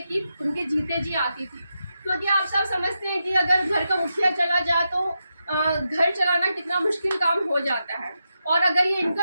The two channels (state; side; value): inverted; both; correlation -0.87